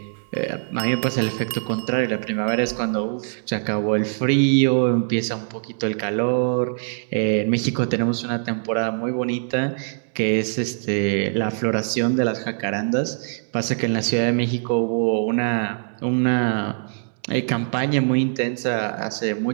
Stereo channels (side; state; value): left; silent; digital silence